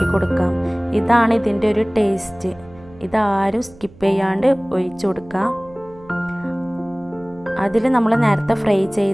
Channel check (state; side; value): noise; right; hum, 23 dB below the sound